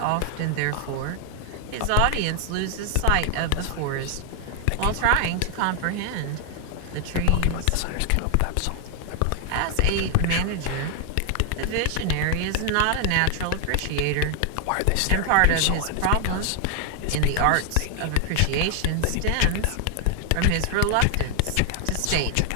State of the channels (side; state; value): both; different; correlation 0.00